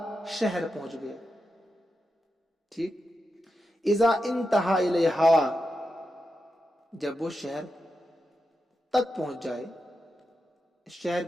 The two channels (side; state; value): both; normal; correlation 0.88